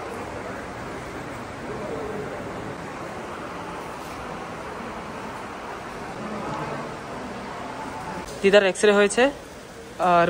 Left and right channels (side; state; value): both; identical; correlation 1.00